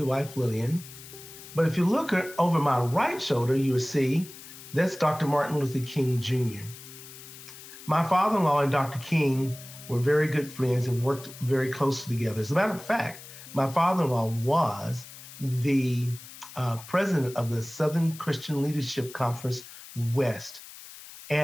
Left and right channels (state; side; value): noise; left; hiss, 16 dB below the sound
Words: wife, Lillian. But if you look over my right shoulder, you will see that's Dr. Martin Luther King Jr. My father-in-law and Dr. King were very good friends and worked very closely together. As a matter of fact, my father-in-law was the president of the Southern Christian Leadership Conference West.